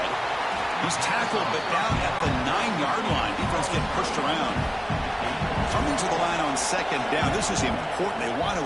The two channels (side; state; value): both; identical; correlation 1.00